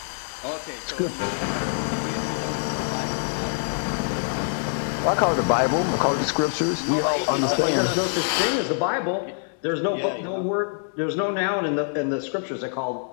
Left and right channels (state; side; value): silent; right; digital silence